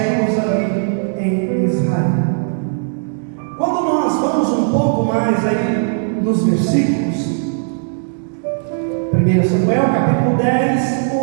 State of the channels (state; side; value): silent; left; digital silence